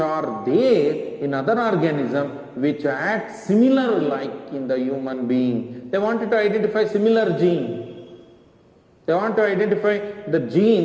there in other organism which act similar like in the human being. They wanted to identify similar gene. They want to identify the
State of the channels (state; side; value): identical; both; correlation 1.00